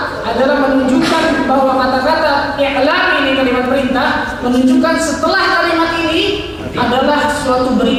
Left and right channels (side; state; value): both; identical; correlation 1.00